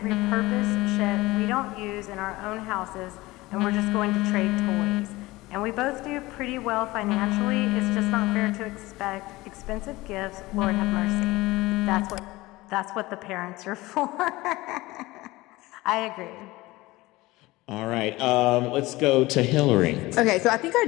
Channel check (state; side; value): quieter; right; 19.9 dB